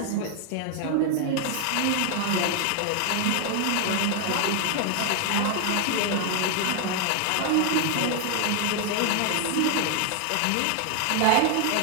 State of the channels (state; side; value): different; both; correlation 0.00